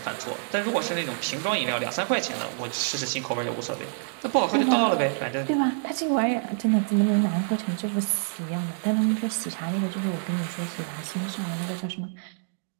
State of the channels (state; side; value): silent; left; digital silence